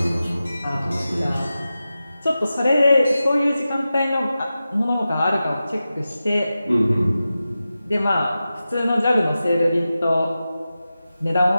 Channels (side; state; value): both; inverted; correlation -0.93